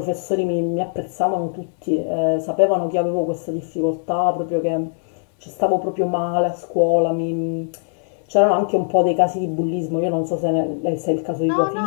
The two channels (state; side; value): silent; right; digital silence